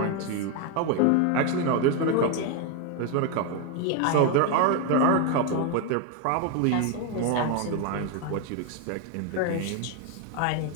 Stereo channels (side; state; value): both; different; correlation 0.01